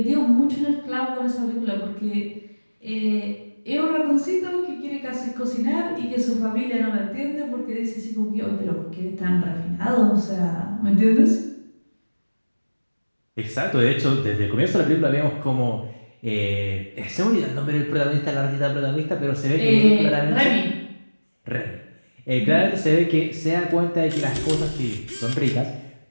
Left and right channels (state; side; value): inverted; both; correlation -1.00